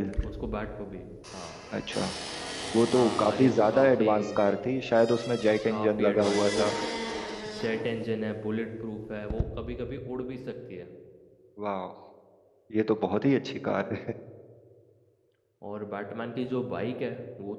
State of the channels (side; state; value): both; identical; correlation 1.00